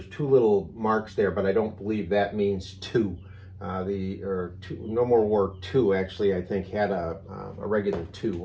two little marks there, but I don't believe that means two. No More War 2 actually, I think, had a regular 2,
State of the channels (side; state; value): both; identical; correlation 1.00